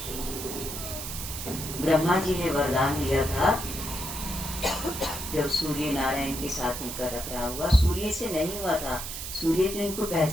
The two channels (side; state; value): right; noise; hiss, 7 dB below the sound